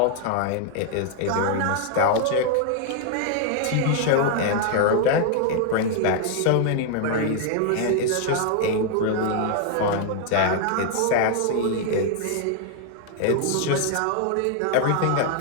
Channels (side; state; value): both; different; correlation 0.00